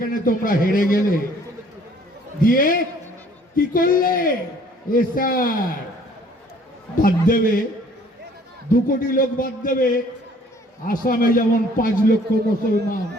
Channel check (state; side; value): normal; both; correlation 0.57